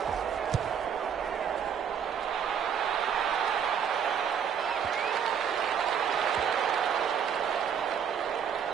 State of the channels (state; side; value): quieter; left; 7.8 dB